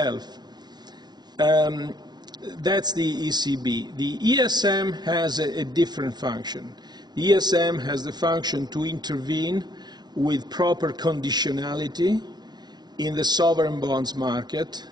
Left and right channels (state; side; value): late; left; 0.20 ms